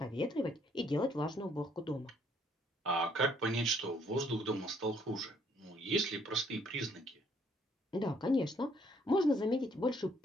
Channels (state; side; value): normal; both; correlation 0.66